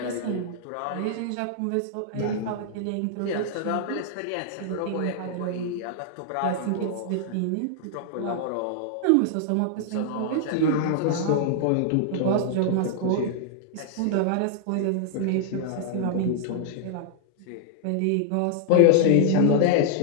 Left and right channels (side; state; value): both; different; correlation -0.01